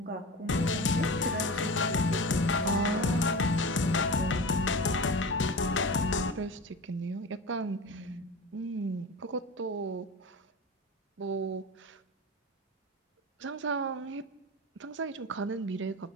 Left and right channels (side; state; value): both; normal; correlation 0.30